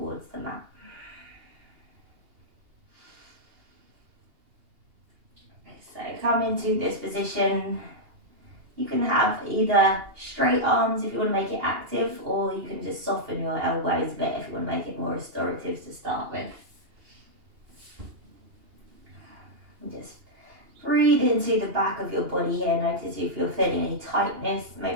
the mat. Okay, so come into this position. You can have either straight arms if you want to make it active, or you can just soften your elbows a bit if you want to make it more restorative to start with. And just breathe into the back of your body here. Notice if you're feeling any tightness,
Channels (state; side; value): late; left; 2.8 ms